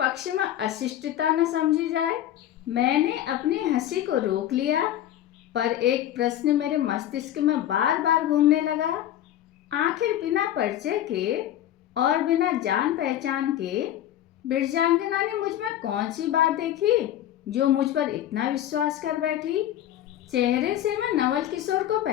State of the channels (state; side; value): quieter; right; 12.0 dB